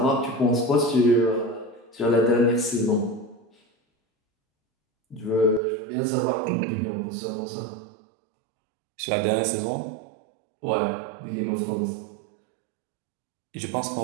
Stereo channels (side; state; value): left; drops out; at 5.6 s